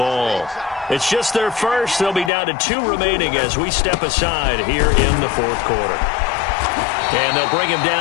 It's just their first. They'll be down to 2 remaining as we step aside here in the fourth quarter. And they'll bring him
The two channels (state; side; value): drops out; right; at 2.3 s